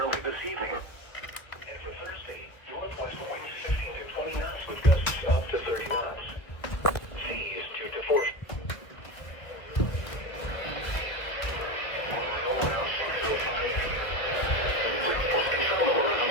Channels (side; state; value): right; late; 1.3 ms